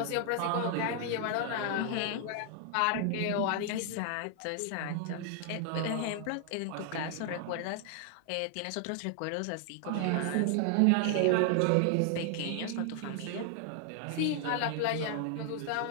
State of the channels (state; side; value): different; both; correlation 0.00